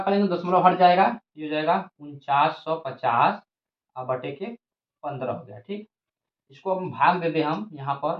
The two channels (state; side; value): identical; both; correlation 1.00